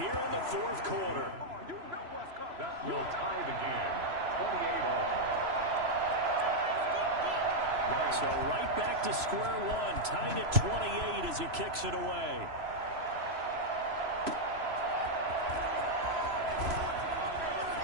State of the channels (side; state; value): left; late; 3.0 ms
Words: in the 4th quarter. That will tie the game, 28 all. So right back to square one, tied at 28 as he kicks it away.